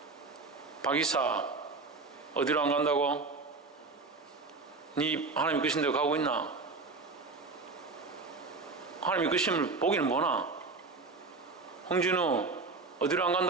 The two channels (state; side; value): quieter; left; 3.9 dB